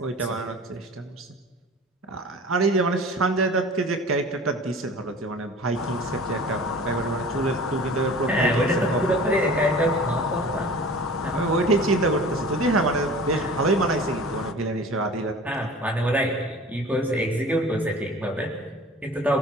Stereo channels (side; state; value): both; normal; correlation 0.41